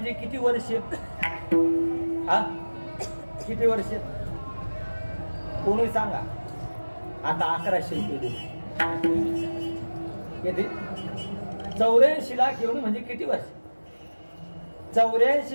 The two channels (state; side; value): inverted; both; correlation -1.00